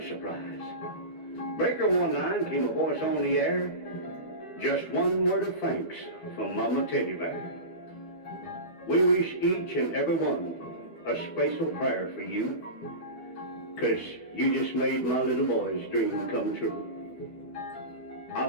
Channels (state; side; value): late; right; 11 ms